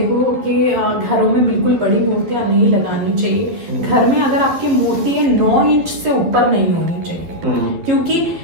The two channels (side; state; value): left; late; 12 ms